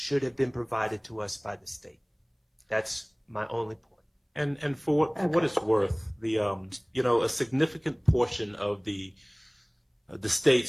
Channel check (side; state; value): both; identical; correlation 1.00